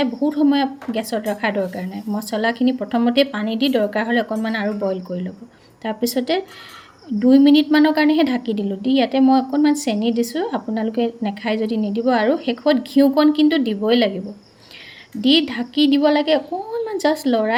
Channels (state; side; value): identical; both; correlation 1.00